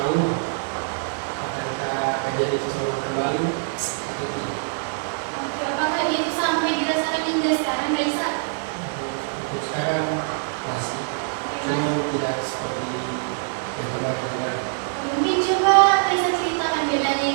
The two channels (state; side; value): silent; left; digital silence